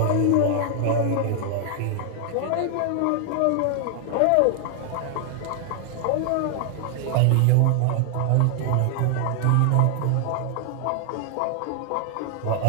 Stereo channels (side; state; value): both; different; correlation 0.00